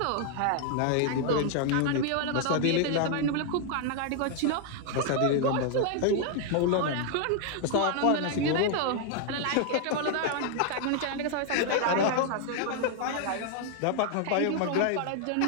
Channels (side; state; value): both; different; correlation 0.00